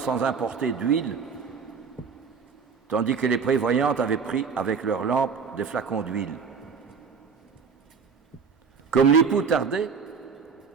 importer d'huile, tandis que les prévoyantes avaient pris avec leurs lampes des flacons d'huile. Comme l'époux tardait,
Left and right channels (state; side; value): quieter; left; 5.7 dB